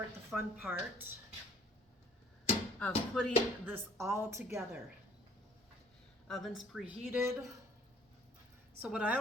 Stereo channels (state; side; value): normal; both; correlation 0.57